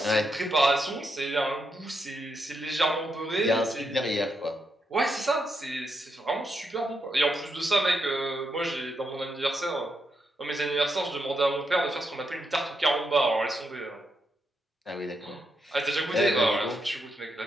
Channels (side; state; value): both; normal; correlation 0.82